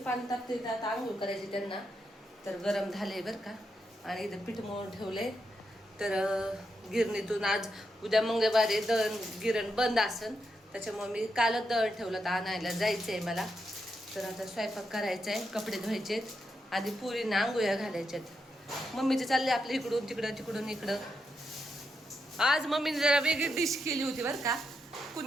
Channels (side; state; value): both; normal; correlation 0.84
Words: पाणी तापते, आता आंघोळ करायची त्यांना. तर गरम झाले बरं का. आणि इथं पीठ मळून ठेवले. तर गिरणीतून आज उद्या मंगळवारी दळण गिरण बंद असन, त्याच्यामुळे मी कालच दळण ठेवलं तर आणायला जायचं आहे मला. तर आता स्वयंपाक करायचा आहे, कपडे धुवायचे आहेत, आधी पुरींना आंघोळ्या घालायच्यात. मम्मीचे चालले आपलं इकडून तिकडं तिकडून इकडं. आज मम्मीने जरा वेगळी डिश केली होती बरं का.